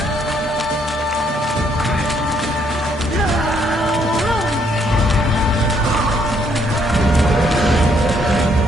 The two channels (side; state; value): both; normal; correlation 0.70